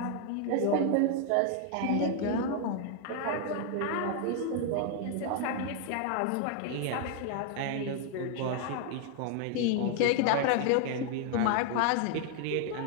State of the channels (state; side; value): different; both; correlation 0.00